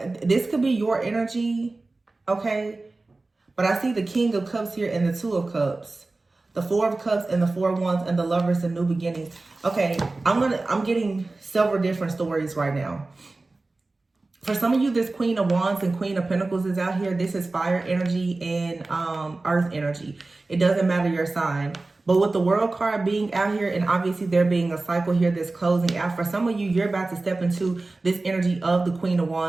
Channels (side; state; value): left; quieter; 3.3 dB